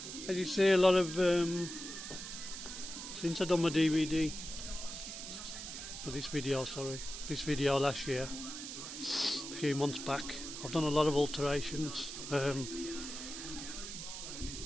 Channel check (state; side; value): noise; right; hiss, 8 dB below the sound